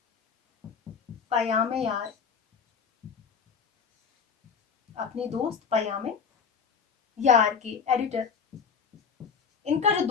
پیام یار، اپنے دوست پیام یار کے ایڈیٹر، ان کا جو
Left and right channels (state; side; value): quieter; right; 6.4 dB